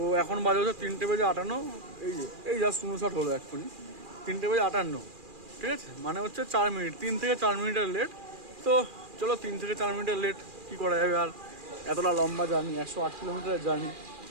এখন বাজে হচ্ছে 3:58। এই জাস্ট 59 হলো এক্ষুনি, 3:58, ঠিক আছে। মানে হচ্ছে 4 মিনিট, 3 থেকে 4 মিনিটের লেট। তো চলো 3 থেকে 4 মিনিটের লেট কী করা যাবে আর, এতটা লম্বা জার্নি, 108 কিলোমিটারের জার্নি,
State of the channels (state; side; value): late; left; 2.4 ms